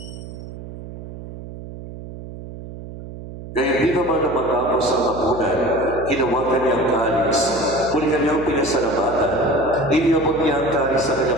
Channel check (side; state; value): right; noise; hum, 12 dB below the sound